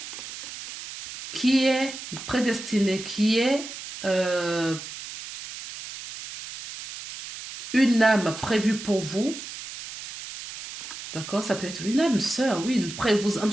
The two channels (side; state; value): right; noise; hiss, 11 dB below the sound